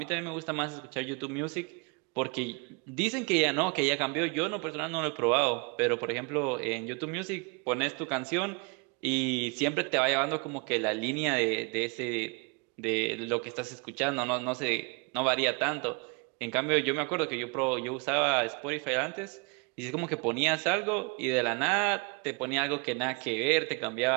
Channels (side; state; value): left; quieter; 31.7 dB